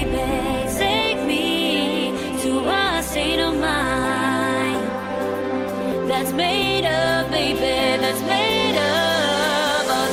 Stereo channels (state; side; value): identical; both; correlation 1.00